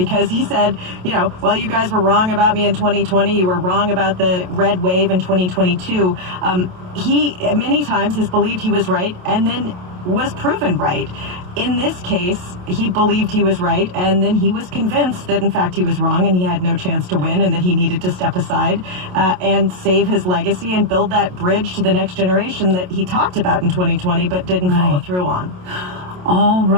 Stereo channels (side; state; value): left; late; 27 ms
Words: he said, well, you guys were wrong about me in 2020. You were wrong about the red wave in 2022. He many times has believed he was right and then was proven right. In this case, he believed he was right, and then he was convinced that, in fact, he was wrong and he had no chance to win and that he needed to step aside and save his legacy and build that bridge to the next generation that he talked about in 2020 but didn't follow through on. All